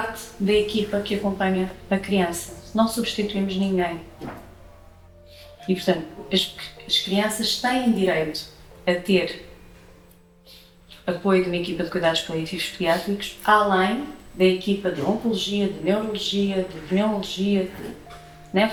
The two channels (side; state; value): both; identical; correlation 1.00